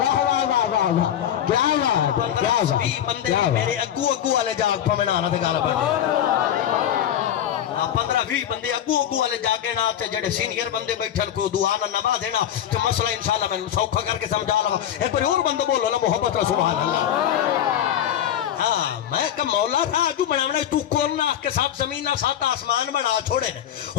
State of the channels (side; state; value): right; quieter; 10.4 dB